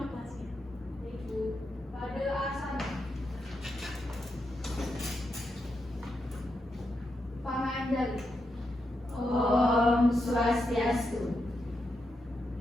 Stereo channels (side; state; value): both; normal; correlation 0.85